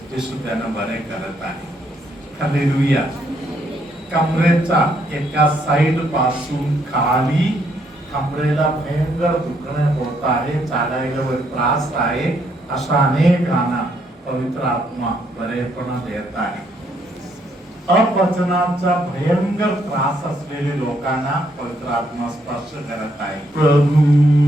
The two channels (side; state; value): both; normal; correlation 0.72